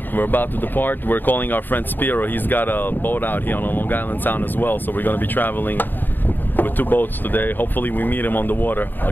We're about to depart. We're calling our friend Spiro. He's got a boat out here on Long Island Sound as well. So we're gonna be traveling with 2 boats today. Hopefully we meet him on the water. I'll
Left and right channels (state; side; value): late; right; 0.091 ms